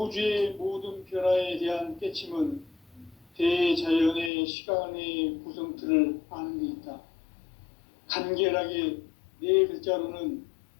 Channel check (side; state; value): right; drops out; at 4.3 s